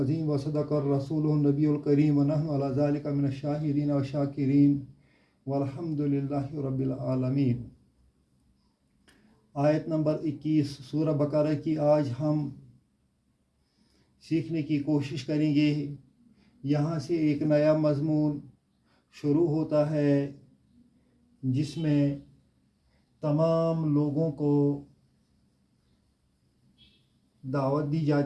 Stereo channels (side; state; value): both; identical; correlation 1.00